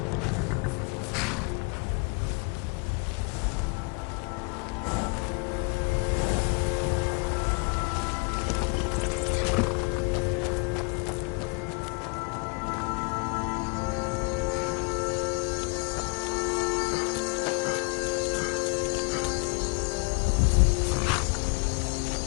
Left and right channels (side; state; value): right; quieter; 33.3 dB